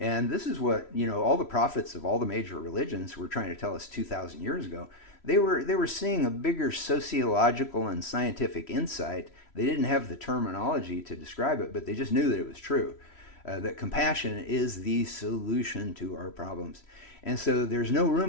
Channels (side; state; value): right; late; 3.1 ms